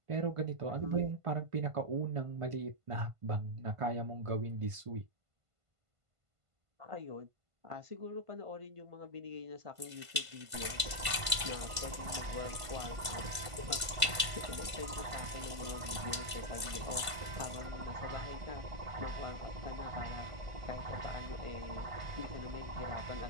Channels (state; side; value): late; left; 1.5 ms